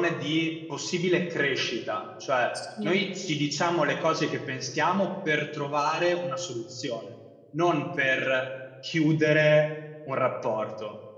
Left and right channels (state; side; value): identical; both; correlation 1.00